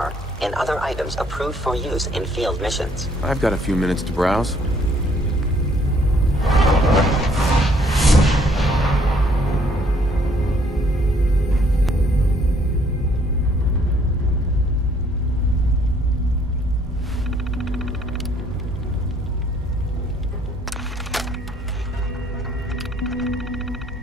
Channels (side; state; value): both; normal; correlation 0.64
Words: and other items approved for use in field missions. I've got a few minutes to browse.